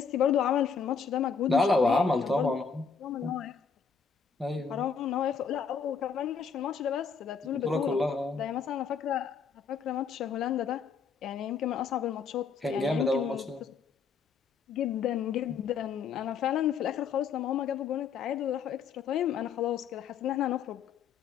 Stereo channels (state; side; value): quieter; right; 5.8 dB